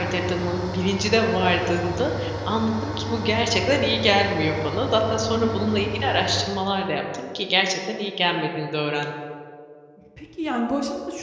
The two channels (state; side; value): identical; both; correlation 1.00